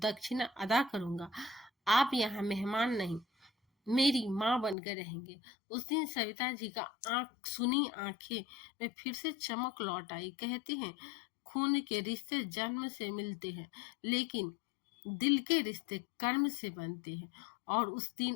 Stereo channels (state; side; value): drops out; right; at 4.8 s